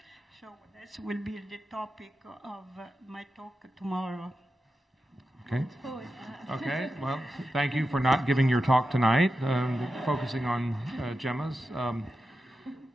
So this will be the topic of my talk tomorrow. Okay. Okay. Well, thank you for not giving your talk tonight, focusing on gemmas.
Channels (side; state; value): both; normal; correlation 0.90